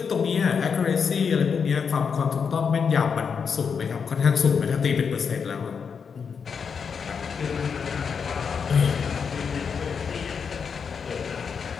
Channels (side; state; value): right; quieter; 6.2 dB